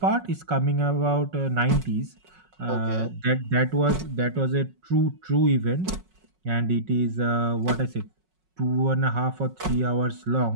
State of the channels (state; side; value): late; left; 5.4 ms